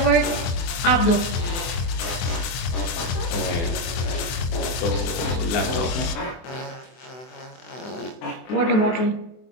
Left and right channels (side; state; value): right; late; 24 ms